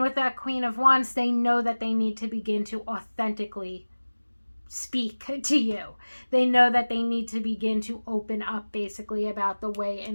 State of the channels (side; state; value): both; inverted; correlation -1.00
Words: with that Queen of Wands, they know that they need to begin to authentically speak to you. They know that they need to begin to open up basically about the way